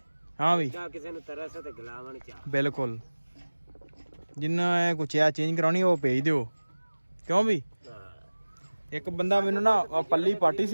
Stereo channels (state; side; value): inverted; both; correlation -1.00